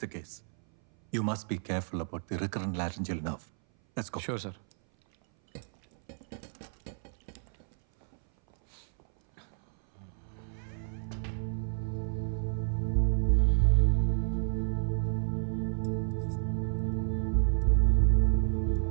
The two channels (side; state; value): left; silent; 57 dB below the other